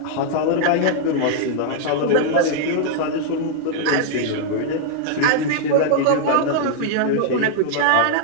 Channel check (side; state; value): both; different; correlation -0.01